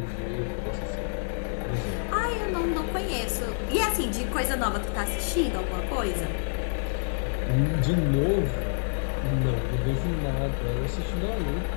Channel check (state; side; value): silent; right; 57 dB below the other